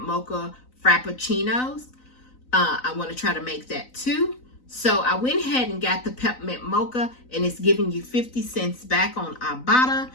Mocha Frappuccinos. I want to try to make that too. So I went ahead and got the Peppermint Mocha, and it's giving you 50 cents back on Ibotta,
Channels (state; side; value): late; right; 3.9 ms